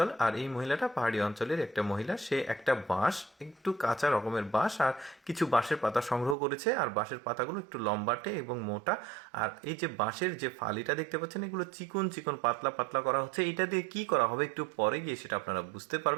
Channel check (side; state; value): left; drops out; at 6.4 s